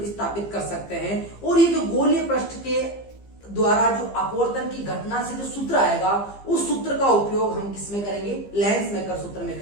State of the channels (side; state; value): right; late; 15 ms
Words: स्थापित कर सकते हैं। और ये जो गोलीय पृष्ठ के द्वारा जो अपवर्तन की घटना से जो सूत्र आएगा, उस सूत्र का उपयोग हम किसमें करेंगे, लेंस मेकर सूत्र में